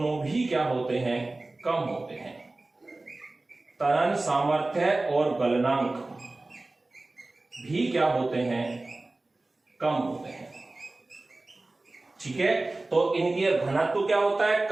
भी क्या होते हैं, कम होते हैं। तनन सामर्थ्य और गलनांक भी क्या होते हैं, कम होते हैं। ठीक है, तो इनकी घनत्व क्या होता है,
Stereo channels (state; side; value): quieter; left; 3.0 dB